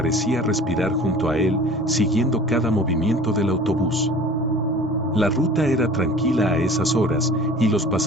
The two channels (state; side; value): normal; both; correlation 0.44